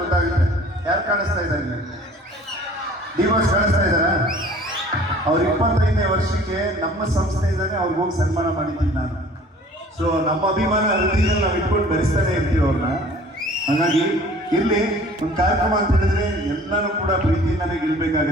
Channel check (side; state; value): both; normal; correlation 0.49